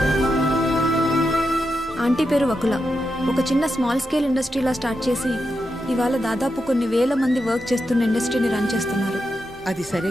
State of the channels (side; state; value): both; normal; correlation 0.87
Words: ఆంటీ పేరు వకుల. ఒక చిన్న స్మాల్ స్కేల్ ఇండస్ట్రీలా స్టార్ట్ చేసి ఇవాళ దాదాపు కొన్ని వేల మంది వర్క్ చేస్తున్న ఇండస్ట్రీని రన్ చేస్తున్నారు. అది సరే